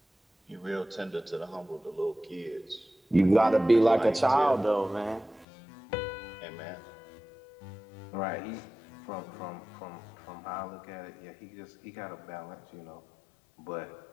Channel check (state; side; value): drops out; right; at 5.5 s